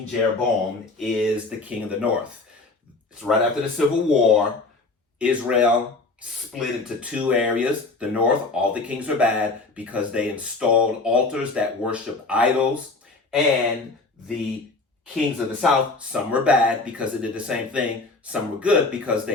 Jeroboam is the king of the north. It's right after the Civil War. Israel split into two areas. The north, all the kings were bad because they installed altars that worship idols. And the kings of the south, some were bad because they did the same thing. Some were good because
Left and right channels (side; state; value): right; quieter; 3.5 dB